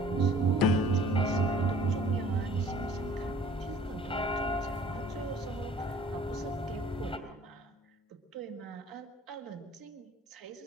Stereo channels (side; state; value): both; normal; correlation 0.52